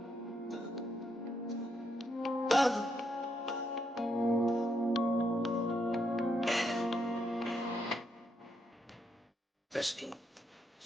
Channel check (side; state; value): both; normal; correlation 0.78